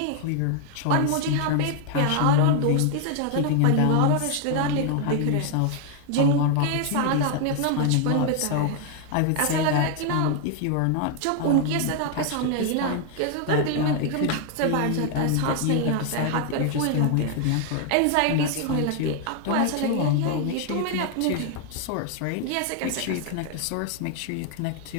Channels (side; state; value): both; different; correlation 0.00